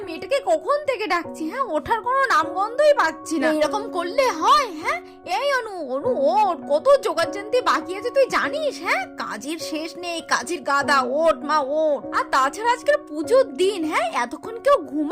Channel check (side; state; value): both; identical; correlation 1.00